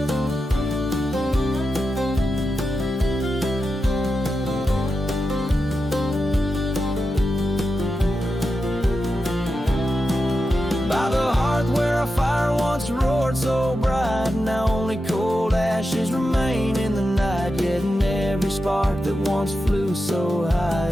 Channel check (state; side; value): normal; both; correlation 0.90